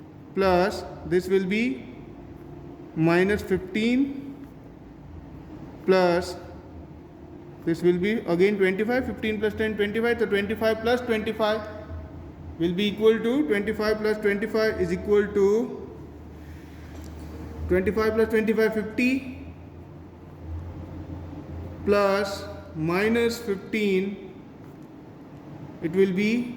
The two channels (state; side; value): identical; both; correlation 1.00